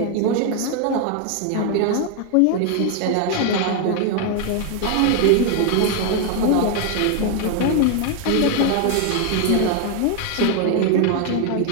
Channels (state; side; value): different; both; correlation 0.01